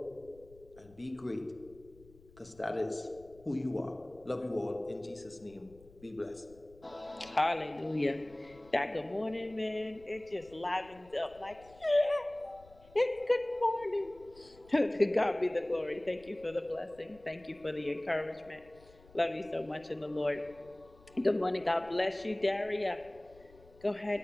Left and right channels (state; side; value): noise; left; rumble, 24 dB below the sound